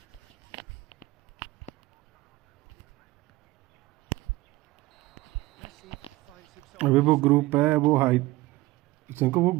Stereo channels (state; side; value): quieter; left; 18.8 dB